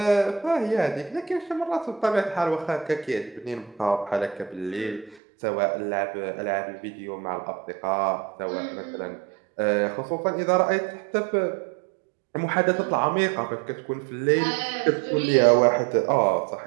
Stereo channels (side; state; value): left; drops out; at 5.2 s